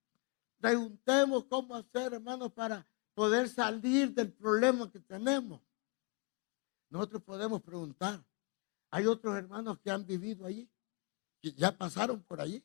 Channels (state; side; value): quieter; right; 29.5 dB